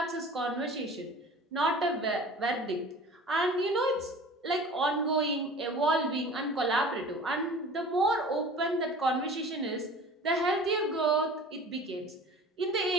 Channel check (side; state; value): both; normal; correlation 0.42